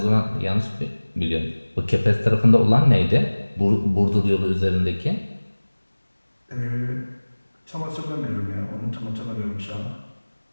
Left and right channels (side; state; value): both; inverted; correlation -1.00